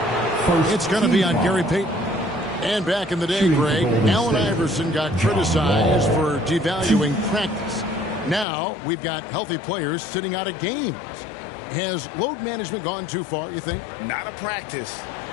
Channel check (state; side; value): drops out; right; at 8.5 s